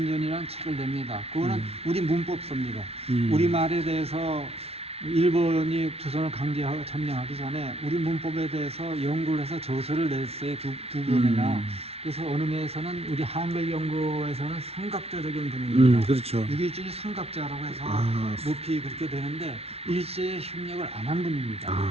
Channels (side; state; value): left; late; 0.30 ms